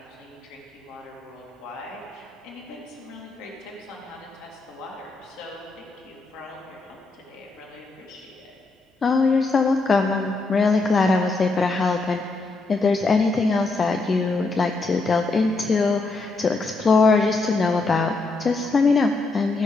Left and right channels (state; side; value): quieter; right; 3.6 dB